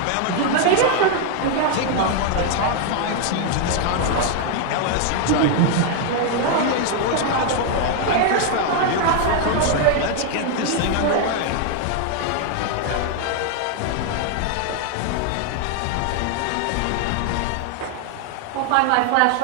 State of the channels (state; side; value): different; both; correlation 0.00